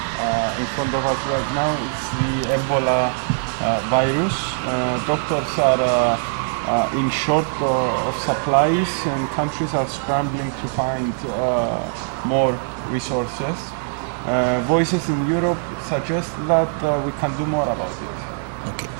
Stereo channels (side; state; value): left; silent; 64 dB below the other